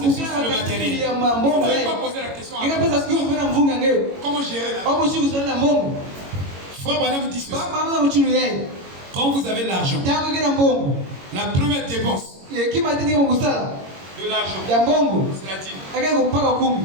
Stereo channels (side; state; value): left; late; 22 ms